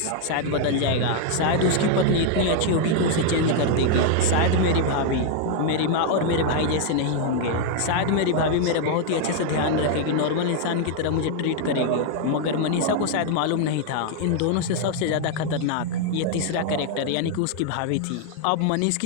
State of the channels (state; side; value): different; both; correlation 0.00